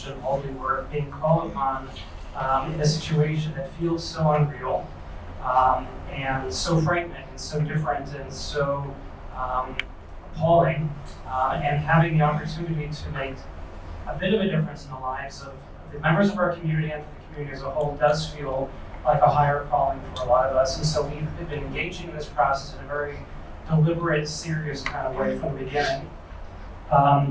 in holy work, being called upon in a situation that feels so unreal and so frightening and so different and so appalling, and having the opportunity to make a bit of a difference in the lives of the members of our community and for the community as a whole does feel like a higher calling for a lot of us. And so we've been engaging in this process in a very deliberate, serious kind of way from the beginning.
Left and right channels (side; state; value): both; identical; correlation 1.00